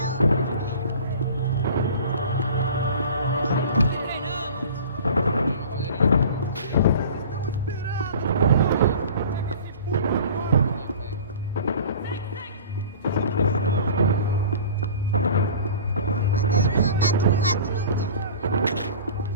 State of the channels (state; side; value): inverted; both; correlation -0.41